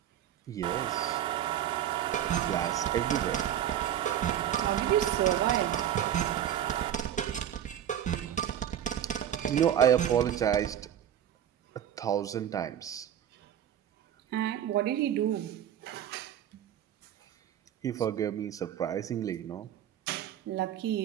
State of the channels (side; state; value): left; quieter; 10.4 dB